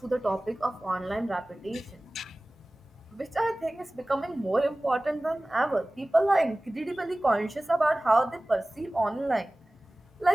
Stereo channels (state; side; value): normal; both; correlation 0.98